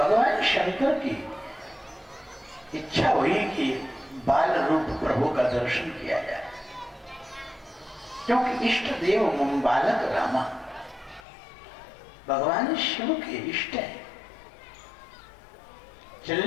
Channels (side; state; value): right; drops out; at 11.2 s